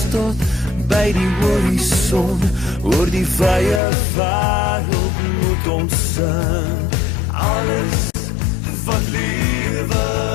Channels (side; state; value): right; drops out; at 3.8 s